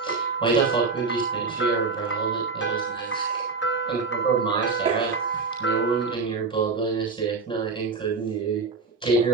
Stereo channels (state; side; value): quieter; left; 4.4 dB